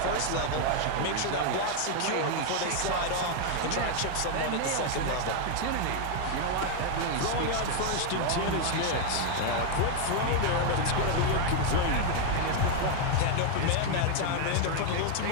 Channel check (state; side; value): different; both; correlation 0.01